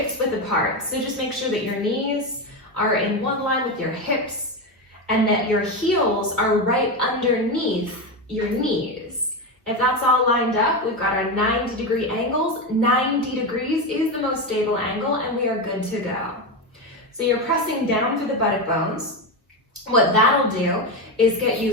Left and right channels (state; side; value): normal; both; correlation 0.14